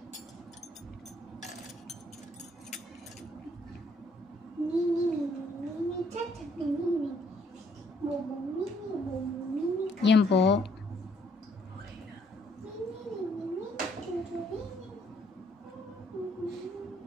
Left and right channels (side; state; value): both; normal; correlation 0.67